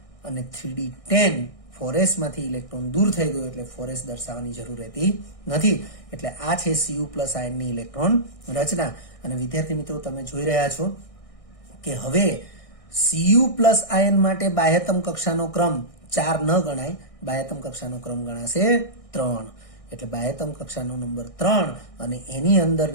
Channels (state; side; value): late; right; 1.6 ms